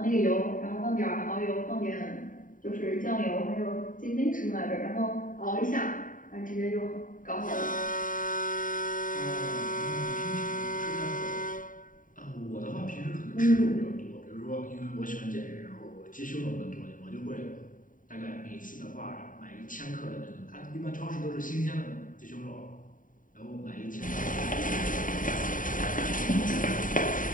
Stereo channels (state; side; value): late; right; 0.39 ms